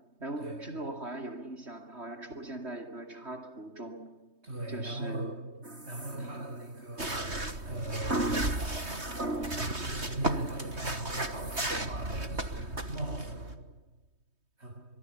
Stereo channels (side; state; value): left; late; 3.2 ms